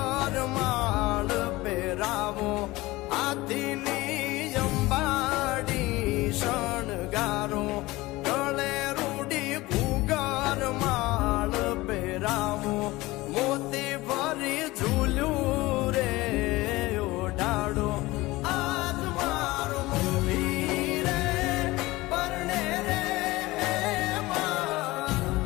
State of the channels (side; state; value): right; quieter; 20.0 dB